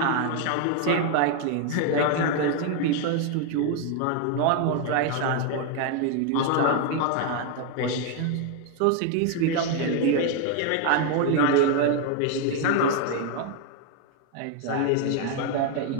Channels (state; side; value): different; both; correlation 0.01